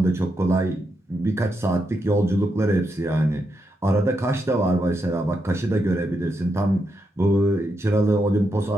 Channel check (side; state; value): both; normal; correlation 0.83